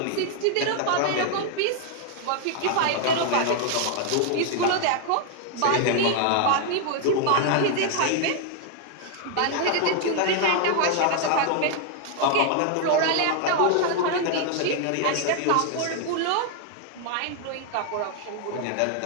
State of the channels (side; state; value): both; different; correlation 0.00